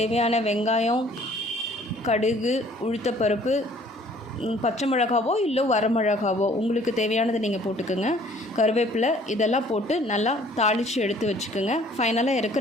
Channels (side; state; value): both; normal; correlation 0.56